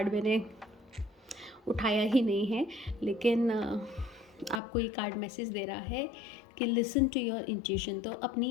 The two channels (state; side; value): drops out; right; at 4.6 s